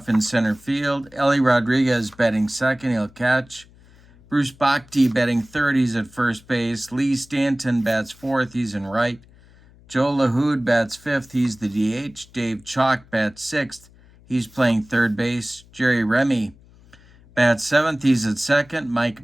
in center field. Ellie Rodriguez batting second, he'll catch. Bruce Bhakti batting third, he's at first base. Lee Stanton bats fourth, he's in right. Joe LaHood bats fifth, he's the DH. Dave Chalk bats sixth, he's playing third base. Jerry Remy bats seventh, he's at second. Mike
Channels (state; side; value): noise; left; hum, 26 dB below the sound